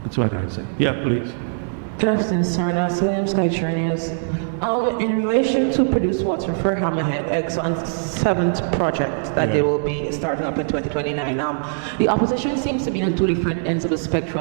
what I say. Yeah, please. Good afternoon, sir. Now, Salam Sky News. In relation to produced water for Hammerhead, Exxon's 7th project that they will be starting up in 2029, the opposition seems to be on two different ends of the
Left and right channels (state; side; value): silent; left; digital silence